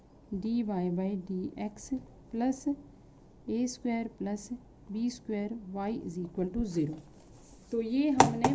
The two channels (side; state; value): both; identical; correlation 1.00